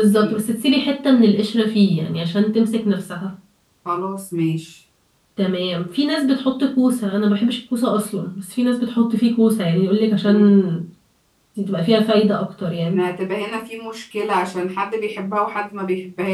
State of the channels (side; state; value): both; identical; correlation 1.00